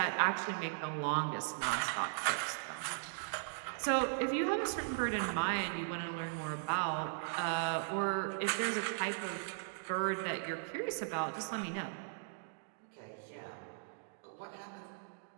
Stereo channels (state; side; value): silent; left; digital silence